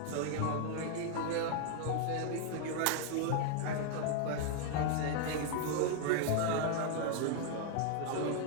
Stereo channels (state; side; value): different; both; correlation 0.00